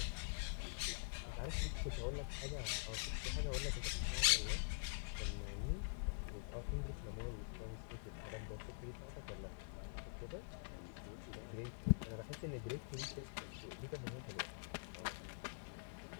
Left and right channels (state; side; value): silent; right; digital silence